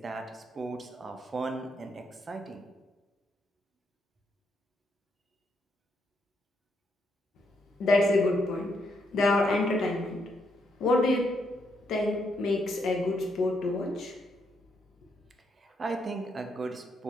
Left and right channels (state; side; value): normal; both; correlation 0.77